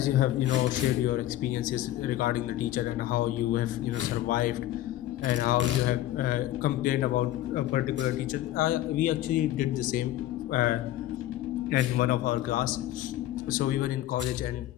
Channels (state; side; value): quieter; right; 14.0 dB